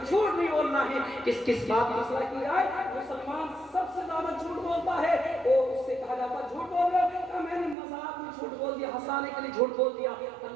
جھوٹ نہیں بولنا ہے۔ کس بات کی مسئلہ کی جائے مسلمان سب سے زیادہ جھوٹ بولتا ہے، اور اس سے کہا جاتا ہے جھوٹ بول رہے ہو، میں نے مذاق میں جھوٹ بول دیا، ہنسانے کے لیے جھوٹ بول دیا۔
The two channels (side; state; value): left; drops out; at 7.8 s